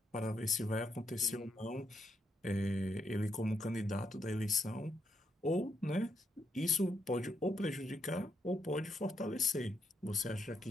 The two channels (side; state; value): both; normal; correlation 0.78